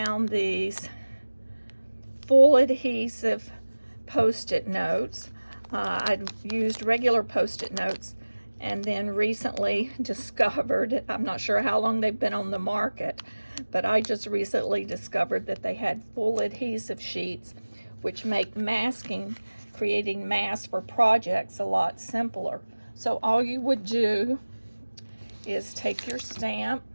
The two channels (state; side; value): inverted; both; correlation -1.00